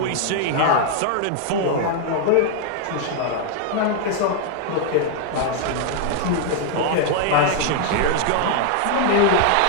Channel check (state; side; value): different; both; correlation 0.00